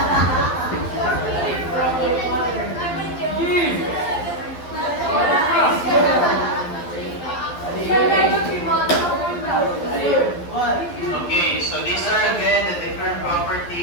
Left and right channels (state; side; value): late; right; 12 ms